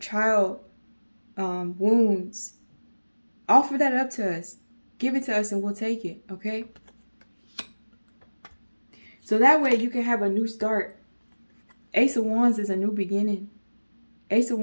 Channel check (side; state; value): both; inverted; correlation -1.00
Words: wounds. Offer that up to us. Give it to us and we'll take it, okay? So that way you can have a new start. Ace of Wands is a new beginning. Ace of